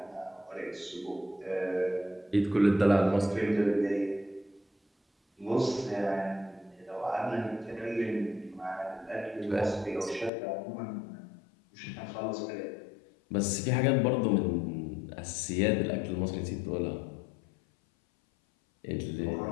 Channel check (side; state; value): right; drops out; at 10.3 s